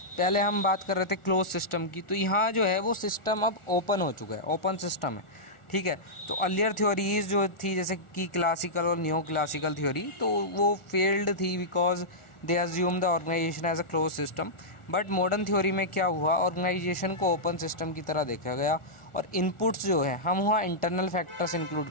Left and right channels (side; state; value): right; late; 1.4 ms